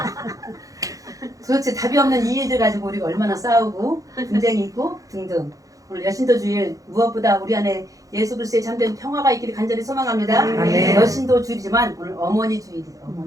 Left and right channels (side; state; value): left; late; 0.17 ms